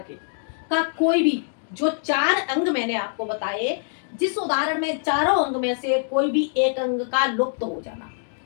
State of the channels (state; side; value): silent; right; digital silence